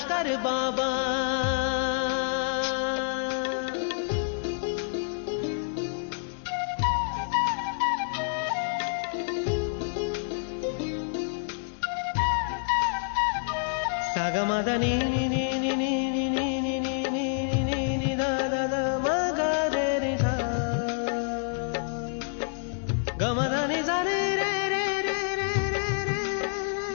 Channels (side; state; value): right; silent; digital silence